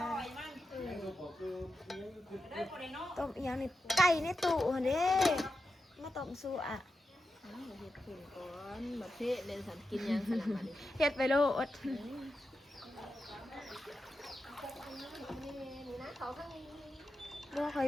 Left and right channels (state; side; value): normal; both; correlation 0.89